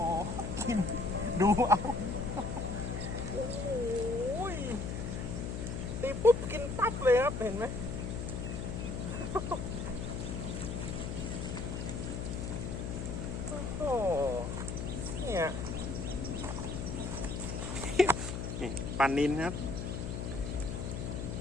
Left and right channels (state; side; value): noise; left; hum, 4 dB below the sound